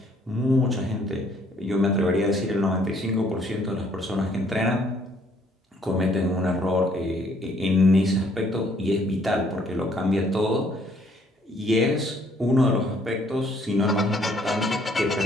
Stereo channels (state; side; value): normal; both; correlation 0.64